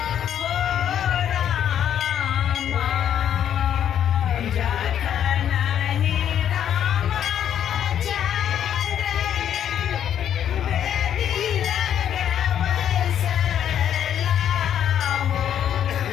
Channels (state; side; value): quieter; right; 9.7 dB